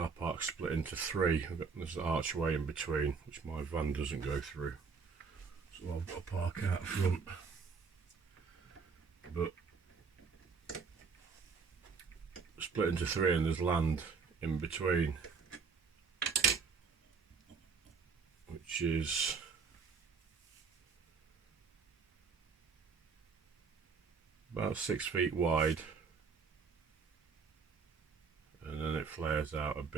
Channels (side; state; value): left; quieter; 5.3 dB